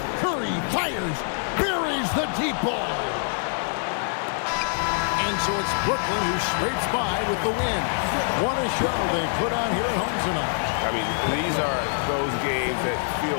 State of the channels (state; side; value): silent; right; 56 dB below the other